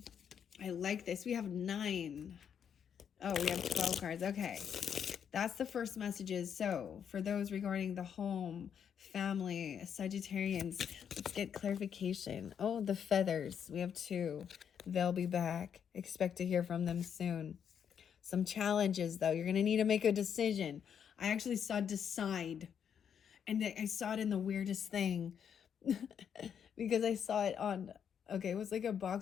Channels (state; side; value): quieter; right; 8.0 dB